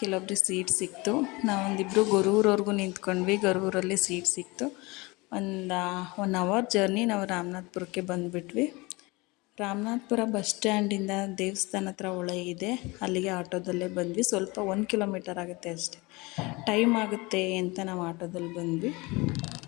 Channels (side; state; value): right; quieter; 24.4 dB